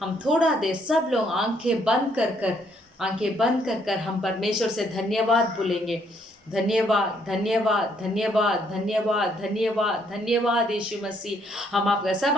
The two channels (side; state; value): both; normal; correlation 0.69